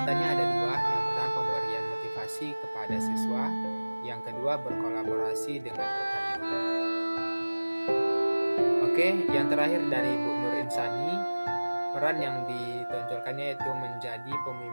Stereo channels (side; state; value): both; inverted; correlation -1.00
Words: ada 2. Yang pertama, pemberian motivasi kepada siswa. Yang kedua, berkolaborasi dengan rekan guru. Oke, yang terakhir dari Bu Nur Insani, peran yang ditonjolkannya itu menjadi